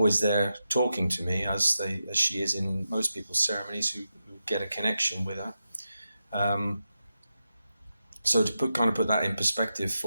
there talking to me, as she is in most people's ceremonies who get a connection with her. So to put that in perspective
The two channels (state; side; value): inverted; both; correlation -0.89